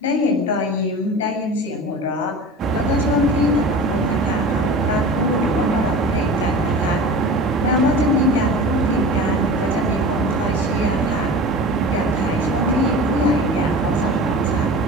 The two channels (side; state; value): both; normal; correlation 0.35